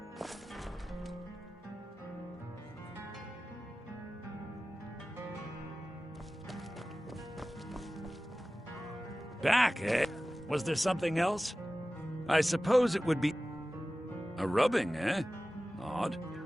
Back, eh? Was there something else? I suppose it would be... a rubbing, eh? Odd.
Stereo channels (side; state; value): both; normal; correlation 0.96